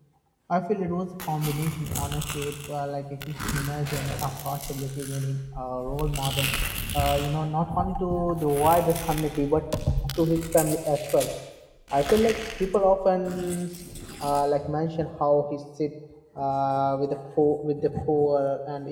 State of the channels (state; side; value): identical; both; correlation 1.00